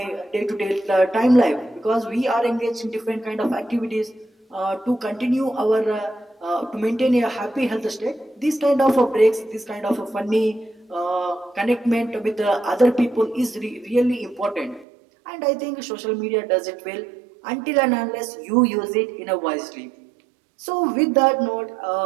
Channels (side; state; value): left; drops out; at 14.9 s